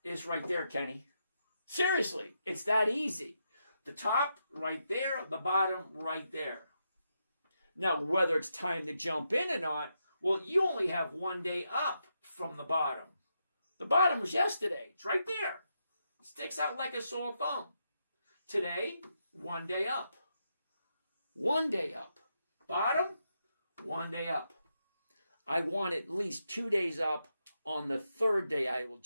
It's right there, Kenny. Seriously, it's that easy. The top right there, the bottom right there. Now, whether it's time to jump in or not, well, you only have 1 day up from the bottom. The bottom was yesterday. It's right there. It sticks out like a sore thumb. Today, 1 day up. 1 day up. Bottom, 1 day up. I want at least 2 days up. On the third day, I will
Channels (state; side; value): inverted; both; correlation -0.83